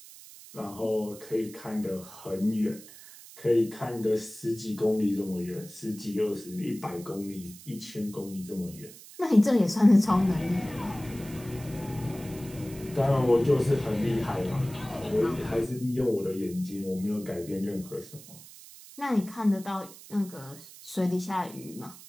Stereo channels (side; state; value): right; noise; hiss, 18 dB below the sound